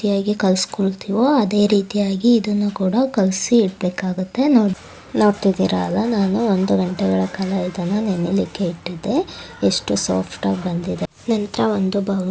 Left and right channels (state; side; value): identical; both; correlation 1.00